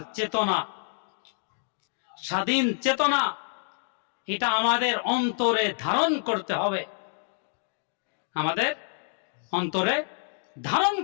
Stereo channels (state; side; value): silent; right; digital silence